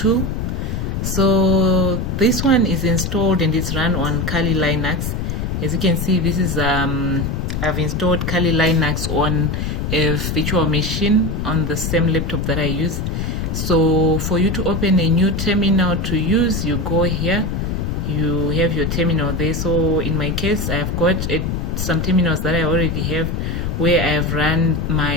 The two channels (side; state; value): left; noise; rumble, 2 dB below the sound